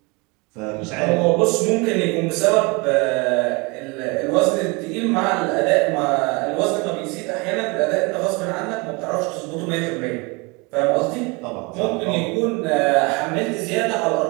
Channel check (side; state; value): left; quieter; 28.0 dB